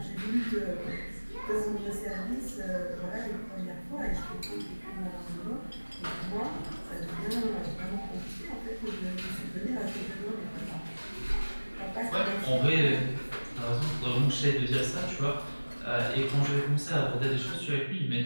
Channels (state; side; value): inverted; both; correlation -1.00